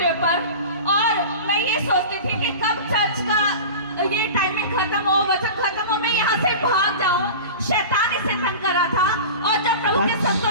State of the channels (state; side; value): inverted; both; correlation -0.32